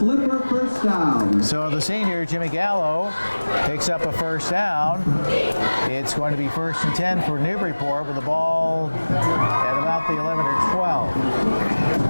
first down. So the senior, Jimmy Gallo, picks up a first down. It's going to be 1st and 10 for Newburyport with the ball at about the 11 or 12.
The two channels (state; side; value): inverted; both; correlation -1.00